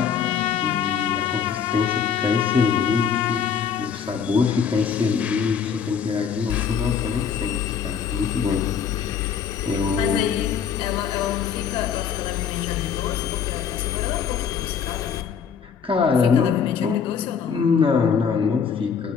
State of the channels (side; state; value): right; quieter; 7.0 dB